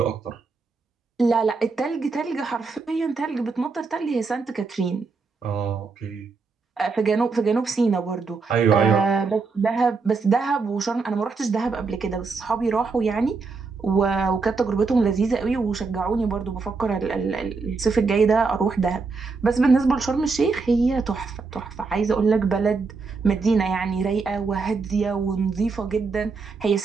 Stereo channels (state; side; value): quieter; left; 4.5 dB